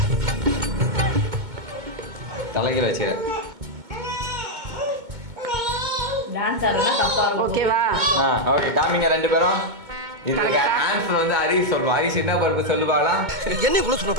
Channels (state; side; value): late; left; 2.2 ms